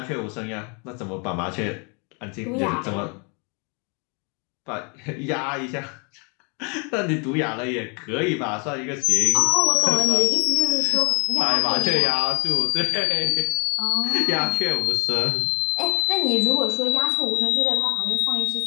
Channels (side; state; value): right; quieter; 34.3 dB